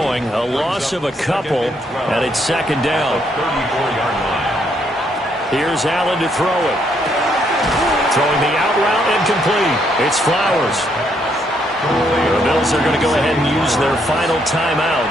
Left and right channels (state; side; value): normal; both; correlation 0.73